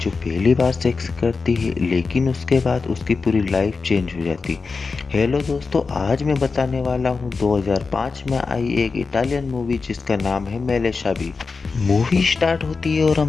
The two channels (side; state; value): right; quieter; 4.5 dB